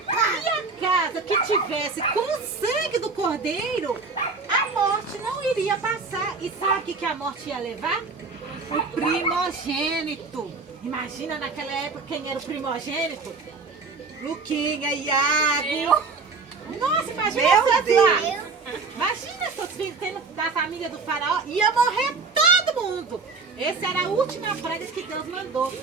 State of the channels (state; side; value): quieter; left; 4.3 dB